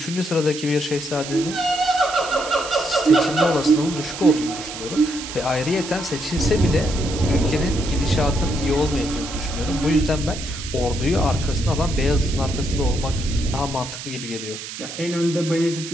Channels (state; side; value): noise; right; hiss, 10 dB below the sound